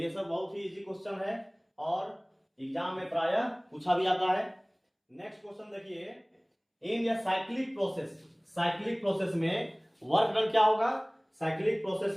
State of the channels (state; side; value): identical; both; correlation 1.00